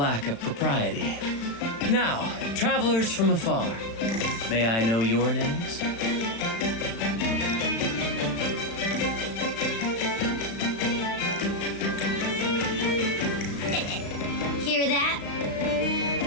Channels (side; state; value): right; late; 35 ms